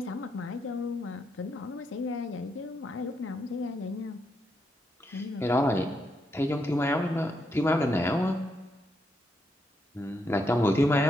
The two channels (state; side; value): normal; both; correlation 0.80